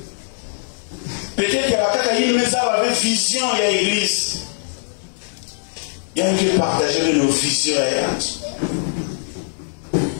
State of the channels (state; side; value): silent; right; digital silence